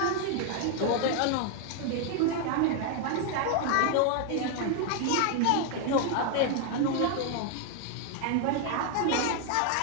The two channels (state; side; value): different; both; correlation 0.00